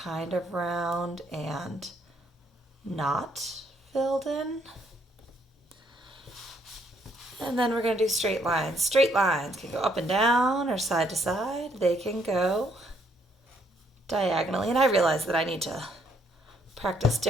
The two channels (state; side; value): normal; both; correlation 0.69